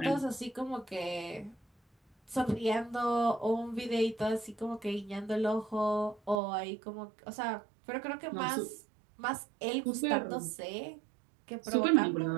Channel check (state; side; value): drops out; left; at 6.4 s